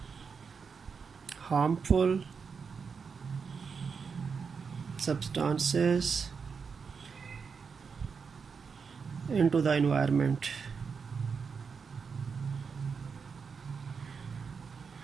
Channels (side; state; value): left; quieter; 5.7 dB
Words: harmful substances into the environment.